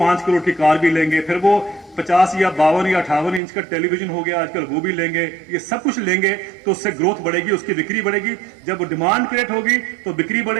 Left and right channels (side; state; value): left; drops out; at 3.4 s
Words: करोड़ की कार भी लेंगे, फिर वो 50 या 52 या 58 इंच का टेलीविजन हो गया आजकल, वो भी लेंगे। ये सब कुछ लेंगे तो उससे ग्रोथ बढ़ेगी, उसकी बिक्री बढ़ेगी। जब डिमांड क्रिएट होगी तो बिक्री